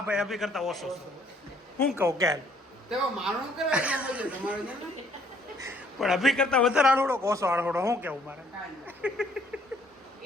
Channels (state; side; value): normal; both; correlation 0.64